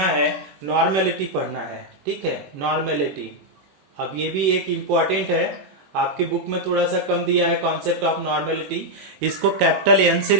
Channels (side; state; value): left; late; 21 ms